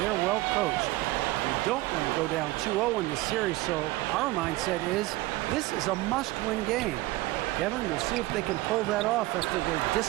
well coached. We don't want to go down 2-0 in this series, so our mindset is this is a must-win game. Kevin, we'll see if they can pull that off after their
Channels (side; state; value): left; quieter; 18.9 dB